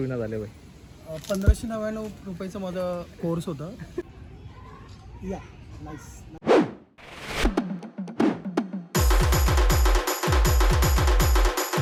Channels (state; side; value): identical; both; correlation 1.00